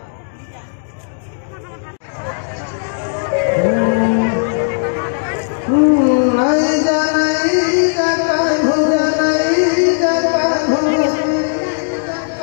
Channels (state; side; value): silent; right; digital silence